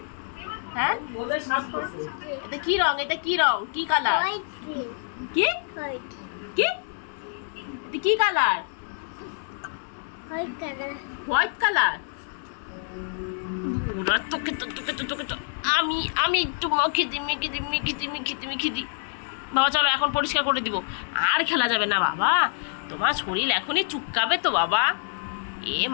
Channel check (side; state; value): right; silent; 61 dB below the other